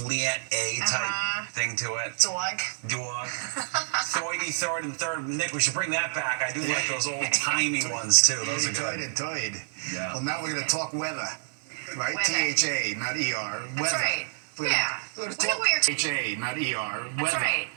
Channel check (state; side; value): silent; left; digital silence